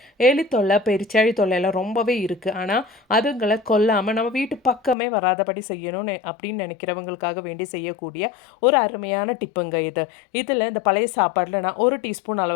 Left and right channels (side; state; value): right; drops out; at 5.0 s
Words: எலி தொல்லை, பெருச்சாழி தொல்லை எல்லாம் ரொம்பவே இருக்குது. ஆனால் அதுங்களை கொல்லாமல் நம்ம வீட்டு பக்கமே வராதபடி செய்யணும்னு அப்படின்னு நினைக்கிறவங்களுக்காக வேண்டி செய்யக்கூடிய ஒரு அருமையான டிப்புங்க இது. இதில் இந்த பழைய சாப்பாடில் நான் 1 டீஸ்பூன்